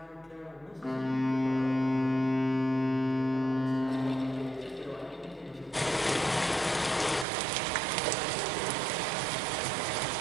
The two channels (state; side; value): drops out; left; at 7.2 s